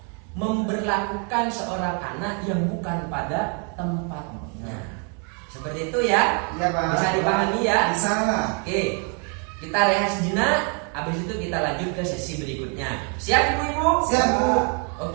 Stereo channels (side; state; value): left; quieter; 38.4 dB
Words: memberlakukan seorang anak yang bukan pada tempatnya. Seperti itu ya. Iya, Pak. Bisa dipahami ya? Bisa. Oke, kita rehat sejenak. Habis itu kita lanjut ke sesi berikutnya. Siap ibu-ibu? Siap, Bu.